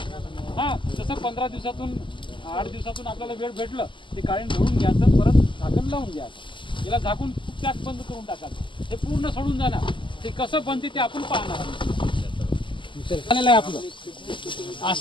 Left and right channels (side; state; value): right; late; 0.24 ms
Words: हा तसं 15 दिवसातून 8 दिवसातून आपल्याला वेळ भेटलं ते काढून धुवून घ्यायचं, परत झाकण लावून घ्यायचं. याला झाकून पॅक बंद करून टाकायचं. हे पूर्ण सोडून जाणार. ते कसं बनते ते आपण पाहणार झालेलं आहे आपलं.